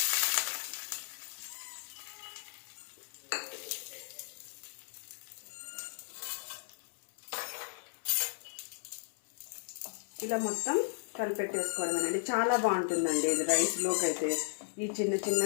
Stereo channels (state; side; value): silent; right; 54 dB below the other